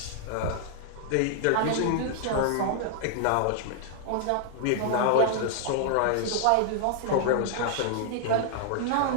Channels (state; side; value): different; both; correlation -0.01